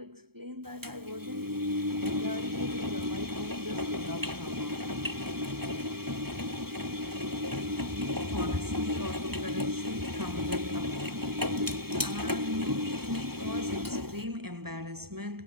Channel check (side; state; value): left; late; 0.95 ms